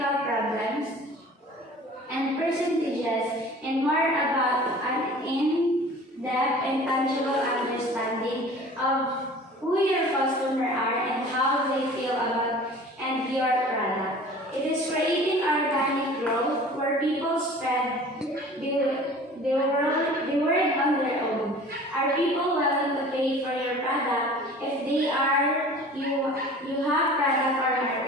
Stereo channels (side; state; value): both; normal; correlation 0.44